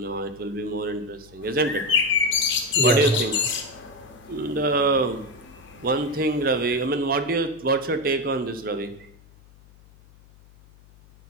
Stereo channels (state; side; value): noise; left; hum, 25 dB below the sound